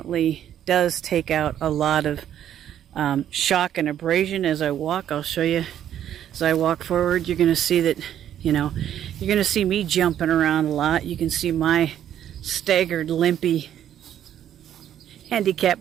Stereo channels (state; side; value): quieter; left; 10.5 dB